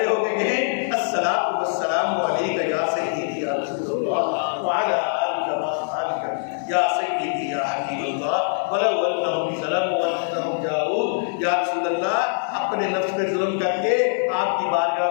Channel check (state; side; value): silent; right; digital silence